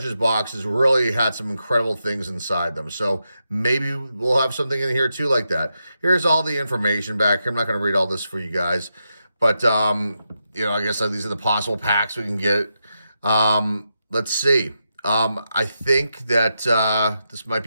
box has really had some incredible things inside them. So maybe we'll have something in here too like that. Here's all the information back here. I'm not going to read all this for you guys. But, I guess these are the possible packs we can get. Let's see. I think that this might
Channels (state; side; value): inverted; both; correlation -0.86